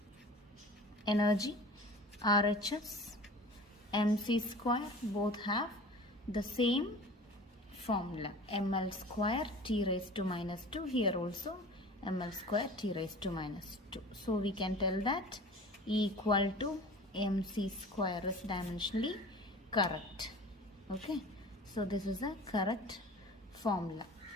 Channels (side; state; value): both; normal; correlation 0.40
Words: Energy, RHS, mc square both have the same formula. ml square t raised to minus 2. Here also ml square t raised to minus 2. So we can tell that E equal to mc square is dimensionally correct. Okay. So this is a correct formula.